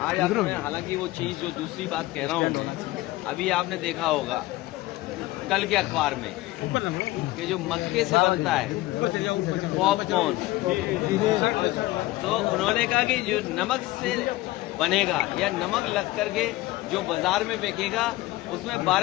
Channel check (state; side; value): quieter; right; 18.5 dB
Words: आपने, हालांकि वो चीज जो दूसरी बात कह रहा हूं मैं, अभी आपने देखा होगा कल के अखबार में कि जो मक्के से बनता है पॉपकॉर्न, तो उन्होंने कहा कि जो नमक से बनेगा या नमक लग करके जो बाजार में बिकेगा उसमें